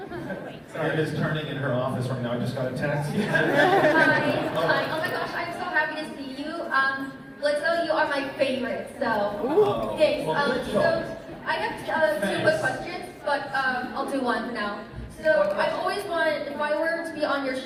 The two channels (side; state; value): both; identical; correlation 1.00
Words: It is turning in her office right now. I just got a text. Hi. Oh my gosh, I'm so happy to see you. Blitzo, you are my favorite. So thanks. So I have two quick questions, but I'll do one for now. So I've always wanted, if I were to be on your